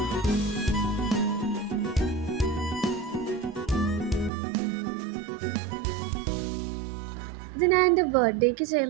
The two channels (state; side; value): drops out; left; at 4.3 s